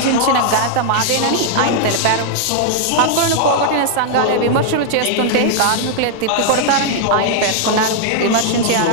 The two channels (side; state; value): both; different; correlation 0.00